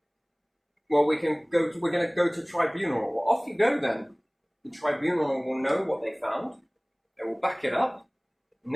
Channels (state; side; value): identical; both; correlation 1.00